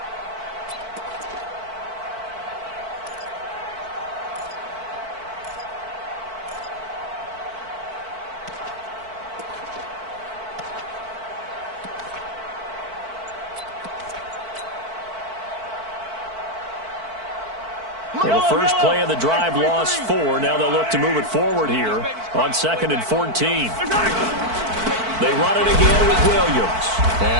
Well, the first play of the drive lost 4. Now they'll look to move it forward here on 2nd and 14. They run it again with Williams.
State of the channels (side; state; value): left; late; 4.5 ms